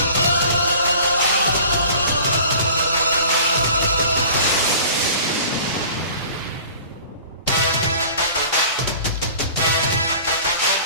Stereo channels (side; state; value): both; inverted; correlation -0.44